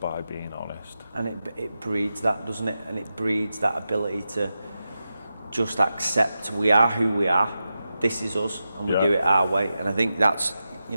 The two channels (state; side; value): inverted; both; correlation -0.90